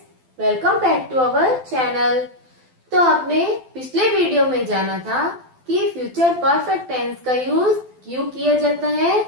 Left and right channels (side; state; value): left; late; 12 ms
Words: welcome back to our channel. तो आपने पिछले वीडियो में जाना था कि फ्यूचर परफेक्ट टेंस का यूज क्यों किया जाता है